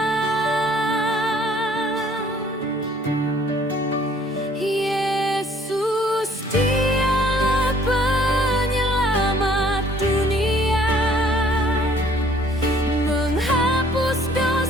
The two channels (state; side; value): normal; both; correlation 0.58